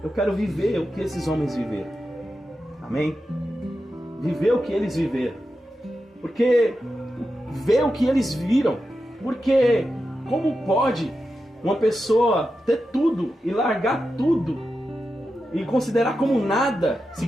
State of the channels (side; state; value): both; normal; correlation 0.90